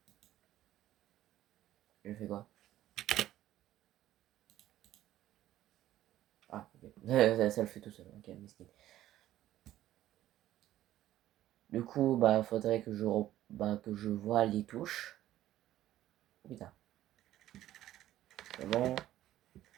Je fais quoi? Ah, ok. Ça le fait tout seul. Ok, miskin. Du coup, bah, faudrait que que je vois les touches. Putain. C'est bon.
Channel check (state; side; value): quieter; left; 13.5 dB